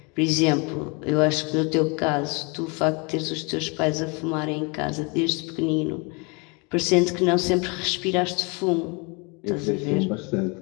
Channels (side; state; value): right; quieter; 30.7 dB